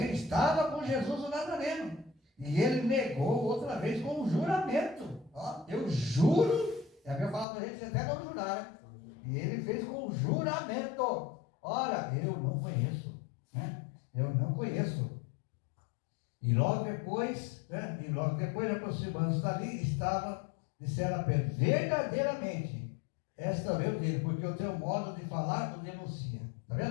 estava com Jesus o Nazareno. E ele negou outra vez com um juramento. Ó, eu juro, é a minha palavra, a gente até não jurar, né? E ele fez com um juramento. Ora, eu não conheço, né? Eu não conheço. E logo depois, né? Aproximando-se dali, disseram a Pedro, verdadeiramente, esta veio dele, porque o teu modo de falar o denuncia. Está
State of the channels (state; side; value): drops out; right; at 7.5 s